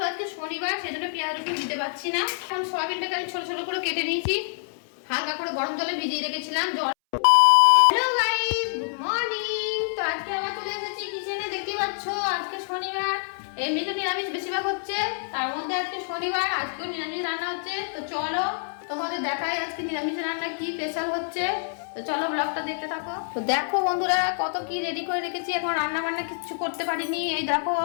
আজকে শনিবার সেজন্য পেঁয়াজ রসুন দিতে পারছি না। এখন সোয়াবিনটাকে আমি ছোট ছোট করে কেটে নিয়েছি, হালকা করে গরম জলে ভিজিয়ে রেখেছিলাম। Hello guys, good morning. তো আজকে আবার চলে এসেছি কিচেনে। দেখতে পাচ্ছ আজকে শনিবার, এমনিতে নিরামিষ বেশিরভাগ হচ্ছে, তার মধ্যে আজকে শনিবার, আজকেও নিরামিষ রান্না হচ্ছে। তো চলো তোমাদের দেখাই আজকে নিরামিষ রান্না কি স্পেশাল হচ্ছে। তো চলো ব্লগটা দেখতে থাকো। তো দেখো বন্ধুরা কত কি রেডি করে রেখেছি, এখন রান্না বান্না কিছু করতে পারিনি। এই দেখো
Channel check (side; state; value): right; silent; 61 dB below the other